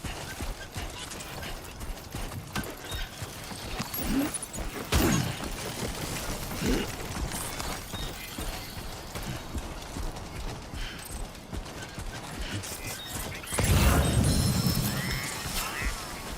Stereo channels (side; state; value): both; identical; correlation 1.00